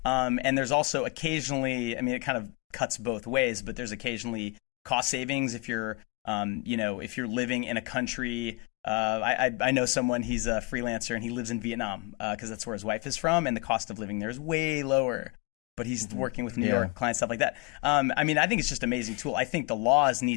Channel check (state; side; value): quieter; right; 23.9 dB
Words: And there's also occasionally, I mean, it kind of cuts both ways, but there's occasionally cost savings if you're, you know, if you're living in a country. I know someone, he's a freelancer and he lives in Vietnam because that's where his wife is from, and the cost of living there is way lower. But he's working with New York clients, stuff like that. I mean, I think it's just an amazing tool. I think the laws